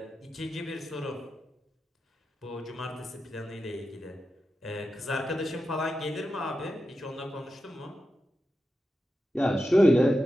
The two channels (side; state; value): both; normal; correlation 0.90